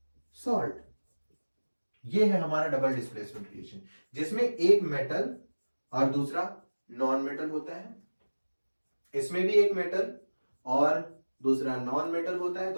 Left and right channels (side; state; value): both; inverted; correlation -1.00